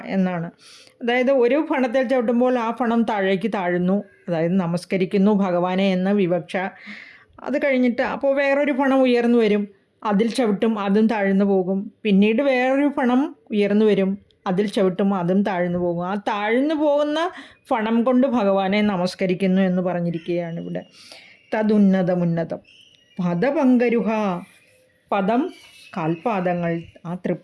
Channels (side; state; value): both; identical; correlation 1.00